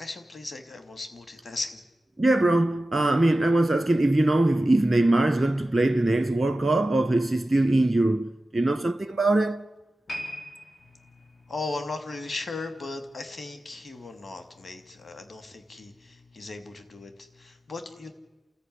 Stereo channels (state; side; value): normal; both; correlation 0.95